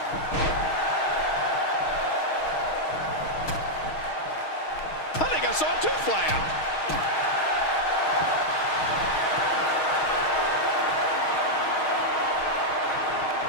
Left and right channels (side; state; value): right; late; 6.4 ms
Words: I think I saw a tooth fly out.